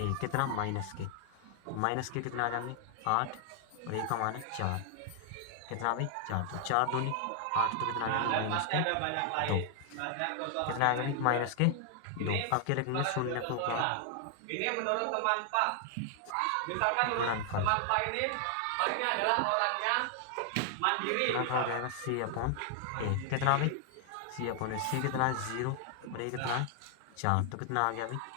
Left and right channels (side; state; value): both; different; correlation 0.00